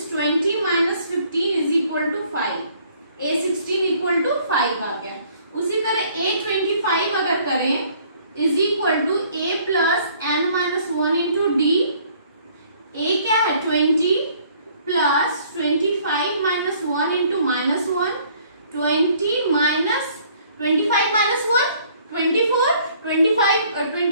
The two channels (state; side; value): inverted; both; correlation -0.59